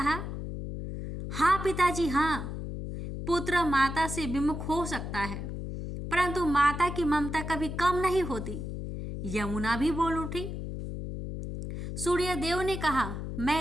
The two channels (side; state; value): left; noise; hum, 6 dB below the sound